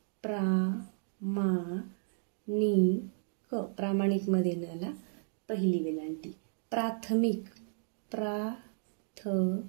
प्रामाणिक, प्रामाणिक मध्ये नला पहिली वेलांटी. प्राथमिक, प्राथमिक,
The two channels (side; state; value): left; silent; digital silence